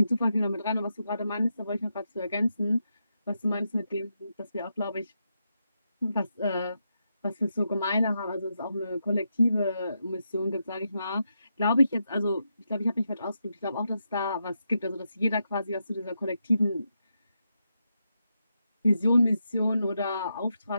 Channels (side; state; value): both; inverted; correlation -0.84